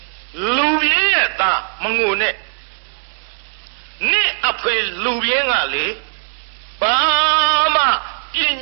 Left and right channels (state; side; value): silent; left; digital silence